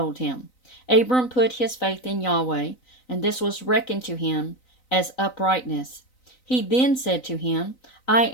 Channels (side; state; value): right; late; 3.9 ms